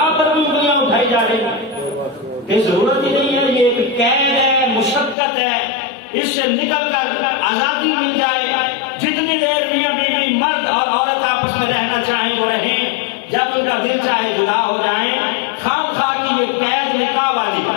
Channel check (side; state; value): right; drops out; at 5.2 s